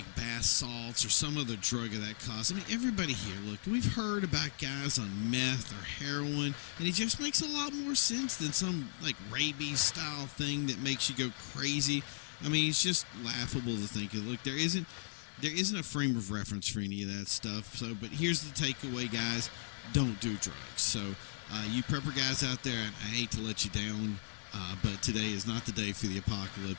bath salts or some other drug of that cost. I mean, everybody here, look, we've heard about guys on meth or heroin, and it just makes a lot more sense than some like rabies-style thing that makes you go crazy. I mean, it's just laughable to think of. Look, there isn't a frame of reference for any of that stuff. So, but here's the takeaway, guys: don't do drugs. So, you prepper guys out there, I hate to let you down. But today is not the day for the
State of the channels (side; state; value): right; silent; 53 dB below the other